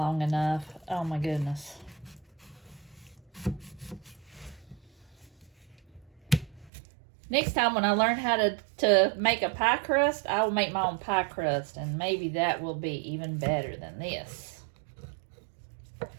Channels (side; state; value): left; drops out; at 6.7 s